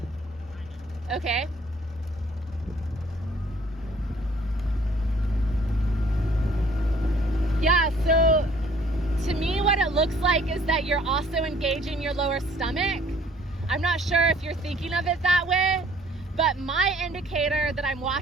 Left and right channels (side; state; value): both; normal; correlation 0.58